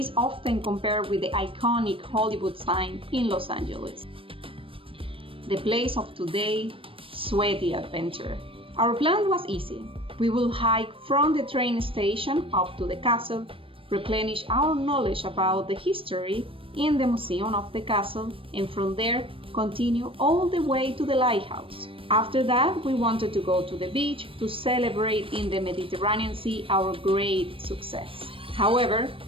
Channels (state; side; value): late; left; 0.26 ms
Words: often compared with the iconic Hollywood sign in Los Angeles. The place of today, sweaty adventure. Our plan was easy. We will hike from the train station up to the castle, replenish our knowledge about the history in the museum of the castle, and from there continue all the way to the lighthouse. After that, we wanted to go to the beach to celebrate in the Mediterranean Sea our great success. However,